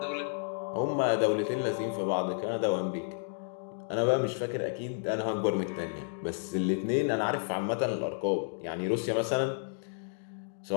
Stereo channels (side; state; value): right; silent; digital silence